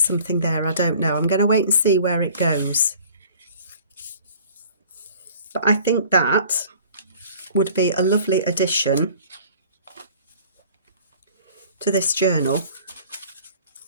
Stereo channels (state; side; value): inverted; both; correlation -0.49